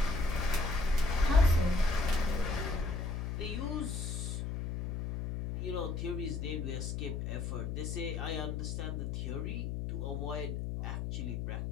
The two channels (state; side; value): noise; left; hum, 3 dB below the sound